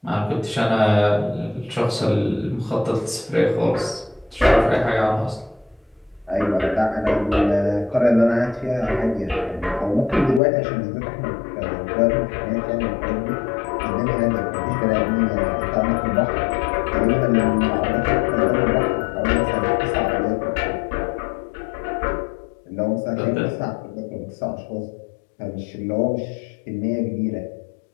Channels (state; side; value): drops out; right; at 10.4 s